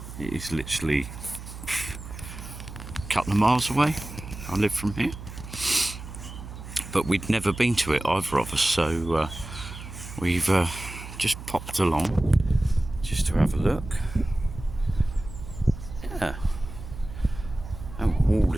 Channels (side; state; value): right; noise; hum, 12 dB below the sound